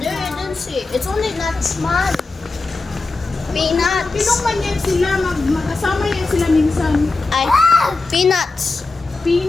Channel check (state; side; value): quieter; right; 3.6 dB